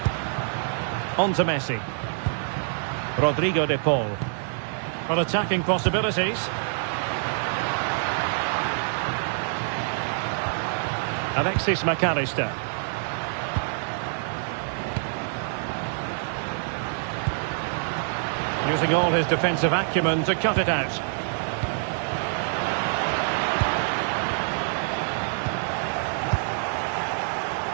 On to Messi. Rodrigo De Paul. On attacking possibilities. Alexis McAllister. Using all his defensive acumen to cut it out.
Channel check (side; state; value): left; silent; digital silence